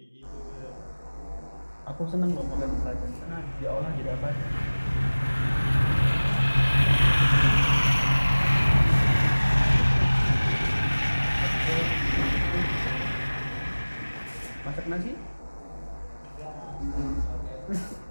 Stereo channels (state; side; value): inverted; both; correlation -1.00